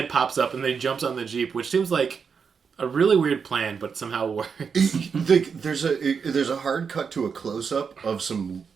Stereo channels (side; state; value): left; quieter; 6.1 dB